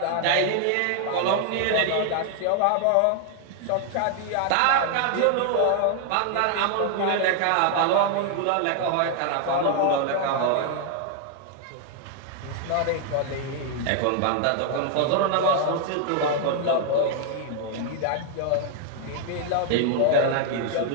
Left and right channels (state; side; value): different; both; correlation 0.00